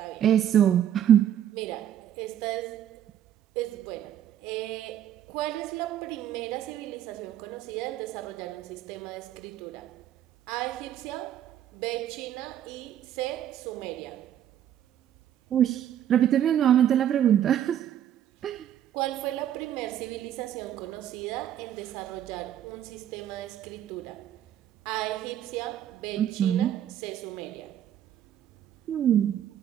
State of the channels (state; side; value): quieter; left; 10.7 dB